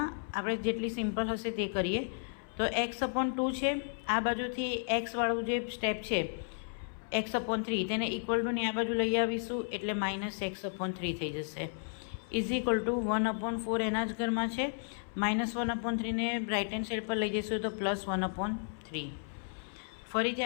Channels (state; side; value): silent; right; 55 dB below the other